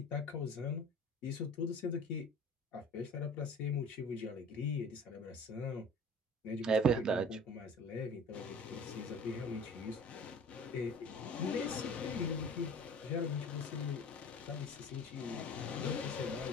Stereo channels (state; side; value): normal; both; correlation 0.43